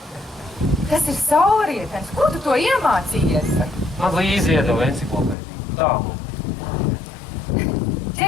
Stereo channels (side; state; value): right; drops out; at 5.4 s